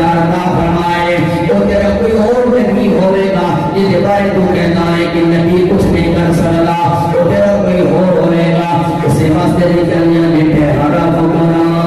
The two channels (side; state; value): both; identical; correlation 1.00